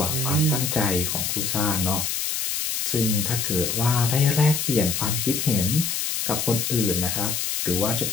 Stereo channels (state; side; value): noise; left; hiss, 1 dB below the sound